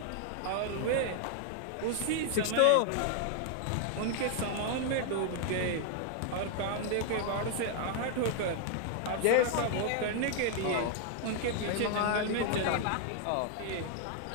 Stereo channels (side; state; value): both; different; correlation 0.00